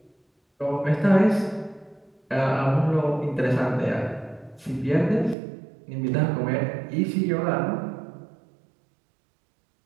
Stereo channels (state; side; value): drops out; left; at 5.4 s